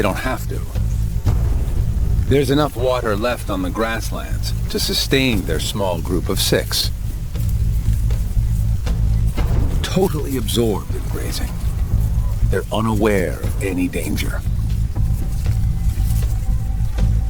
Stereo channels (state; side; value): identical; both; correlation 1.00